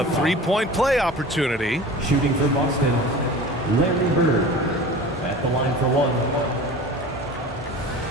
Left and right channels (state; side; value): normal; both; correlation 0.37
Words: three-point play opportunity. Shooting for Boston, Larry Bird at the line for one.